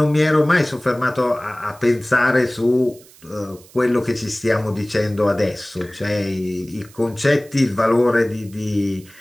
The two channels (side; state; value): right; noise; hiss, 24 dB below the sound